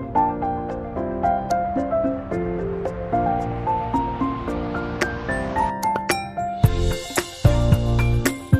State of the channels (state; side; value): identical; both; correlation 1.00